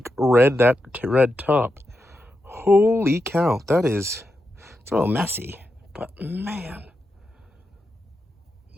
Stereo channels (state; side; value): normal; both; correlation 0.87